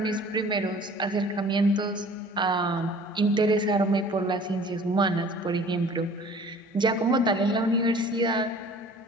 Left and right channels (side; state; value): both; normal; correlation 0.48